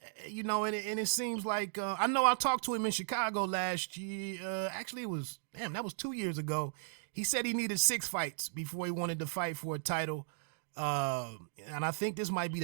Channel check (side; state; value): left; silent; digital silence